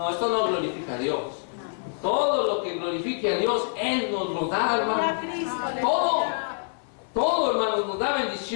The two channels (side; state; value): right; silent; 61 dB below the other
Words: esto no glorifica a Dios. Todo lo que glorifique a Dios, Él nos lo da, hermano. Todo, hermanos, nos da